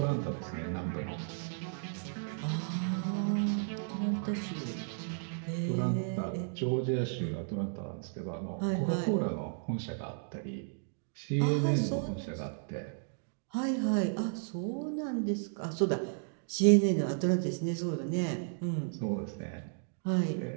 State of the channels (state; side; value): silent; left; digital silence